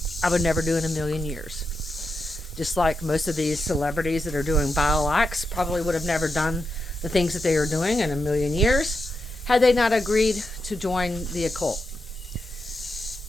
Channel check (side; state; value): both; normal; correlation 0.86